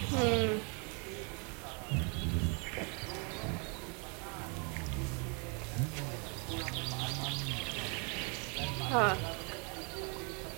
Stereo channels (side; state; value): left; quieter; 34.7 dB